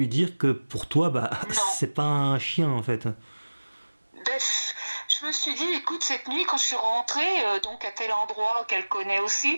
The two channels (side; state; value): both; inverted; correlation -1.00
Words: dire que pour toi, c'est pas un chien, en fait. Je me suis dit, écoute, cette nuit, quand je suis rentrée, donc à tel endroit qu'elle connaît aussi,